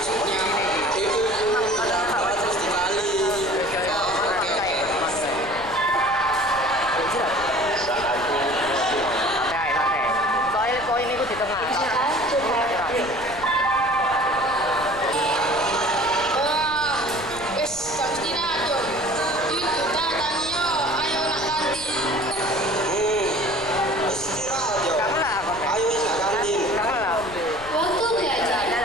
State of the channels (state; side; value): noise; left; rumble, 17 dB below the sound